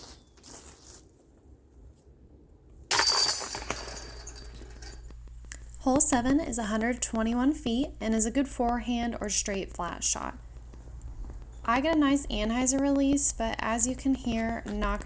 Hole 7 is 121 feet and is a good forehand or straight flat shot. I get a nice anhyzer release, but as you can hear, knock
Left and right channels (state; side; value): identical; both; correlation 1.00